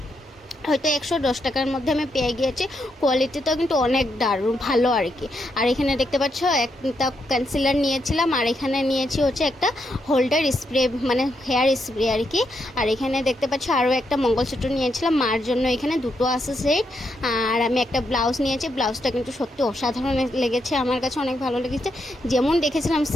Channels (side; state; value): both; normal; correlation 0.80